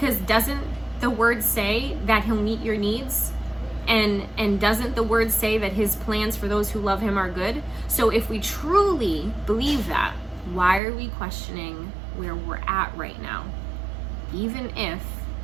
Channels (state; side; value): drops out; left; at 10.8 s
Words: doesn't the word say that he'll meet your needs? And doesn't the word say that his plans for those who love him are good? So if we truly believe that, why are we questioning where we're at right now? Even if